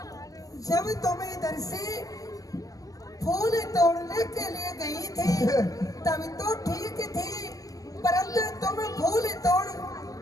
जब तुम इधर से फूल तोड़ने के लिए गई थी तब तो ठीक थी, परंतु तुम फूल तोड़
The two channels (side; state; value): right; late; 0.17 ms